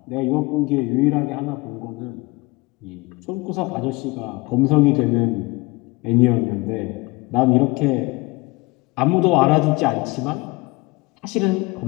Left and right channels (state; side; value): quieter; right; 23.5 dB